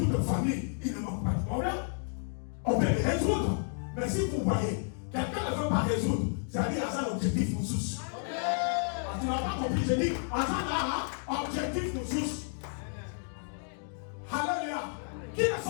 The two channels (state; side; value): silent; right; 57 dB below the other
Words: famille, il ne manque pas de problème. On peut les résoudre. Mais si vous voyez, quelqu'un ne veut pas résoudre, c'est-à-dire à ça l'objectif nous soucie. Tu n'as pas compris, je dis, à ça là, objectif nous soucie. Alléluia. Qui ne